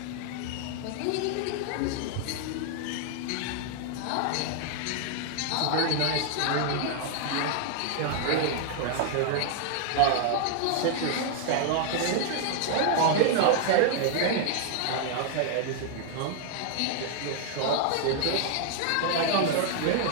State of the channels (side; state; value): both; different; correlation 0.00